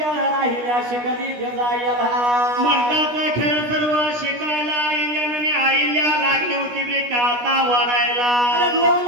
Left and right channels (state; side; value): late; left; 16 ms